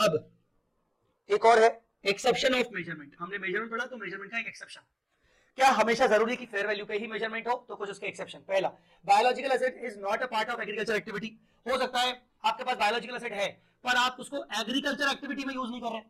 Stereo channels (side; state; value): both; identical; correlation 1.00